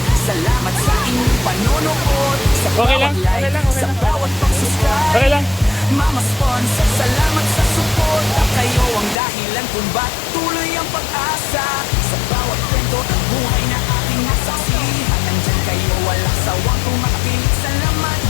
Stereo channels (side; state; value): right; drops out; at 9.2 s